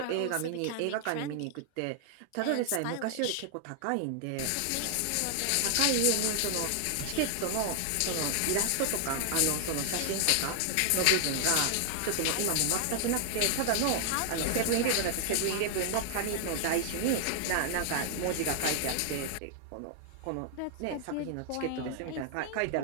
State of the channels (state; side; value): different; both; correlation 0.00